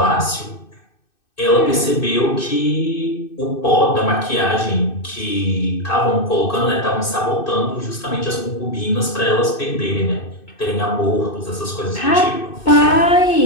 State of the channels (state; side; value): late; right; 2.6 ms